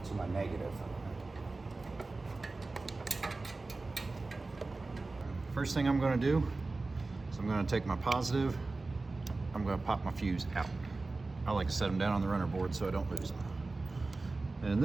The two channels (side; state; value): left; quieter; 3.5 dB